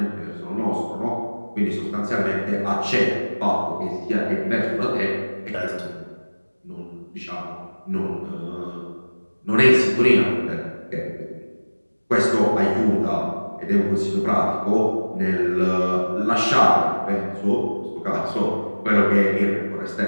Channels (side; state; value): both; inverted; correlation -1.00